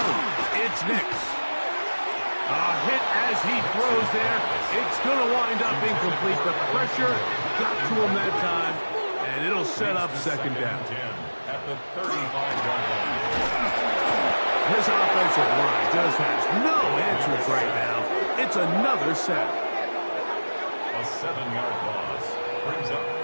it's Nix. A hit as he throws there. It's going to wind up incomplete. The pressure got to him that time, and it'll set up 2nd down. At the 35-yard line. This offensive line just has no answers right now. It's another sack. A 7-yard loss brings up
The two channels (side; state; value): both; inverted; correlation -1.00